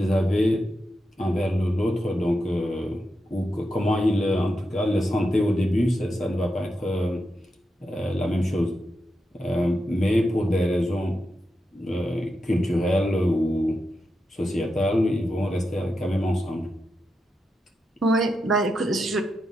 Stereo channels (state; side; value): normal; both; correlation 0.87